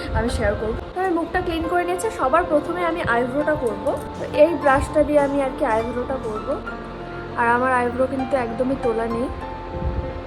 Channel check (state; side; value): identical; both; correlation 1.00